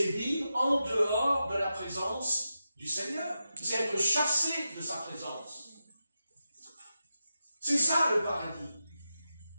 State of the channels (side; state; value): both; inverted; correlation -0.90